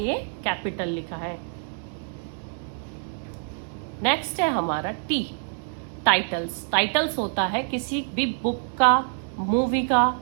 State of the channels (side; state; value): left; silent; 61 dB below the other